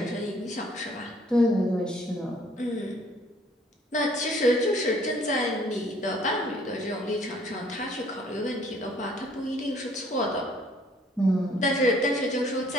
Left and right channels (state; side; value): normal; both; correlation 0.59